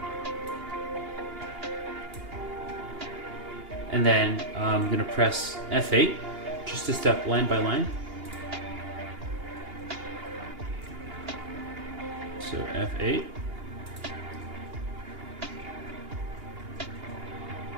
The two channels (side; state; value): left; late; 2.8 ms